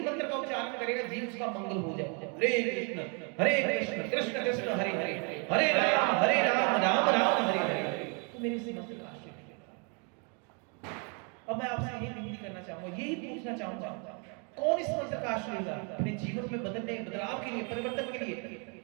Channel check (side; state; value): left; quieter; 36.2 dB